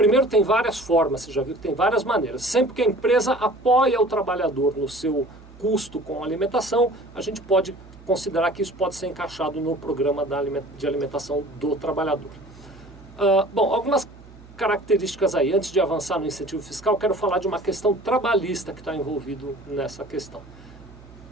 tem várias formas, você já viu que tem várias maneiras. Sempre que a empresa apoia o trabalhador no seu custo com a alimentação, a gente pode considerar que isso pode ser encaixado no programa de alimentação do trabalhador. Bom, algumas características aí. Antes de avançar no incentivo fiscal, quero falar de uma questão trabalhista que está envolvido nessa questão.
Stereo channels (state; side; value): noise; right; hum, 21 dB below the sound